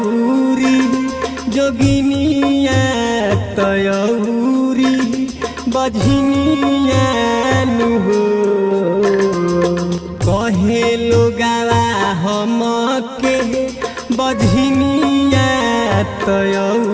जोगिनिया तयौरी बझनिया नुहो कहे लोगावा हमके बझनिया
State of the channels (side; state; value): both; identical; correlation 1.00